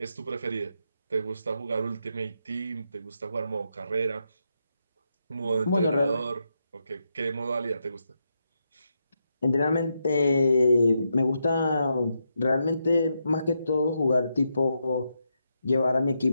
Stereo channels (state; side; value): inverted; both; correlation -0.83